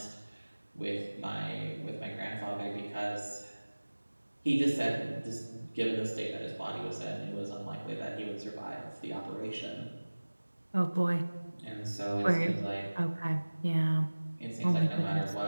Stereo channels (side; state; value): both; inverted; correlation -1.00